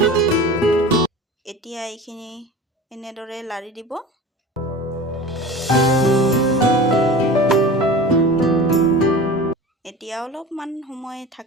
এতিয়া এইখিনি এনেদৰে লাৰি দিব। এতিয়া অলপমান সময়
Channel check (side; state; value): both; normal; correlation 0.35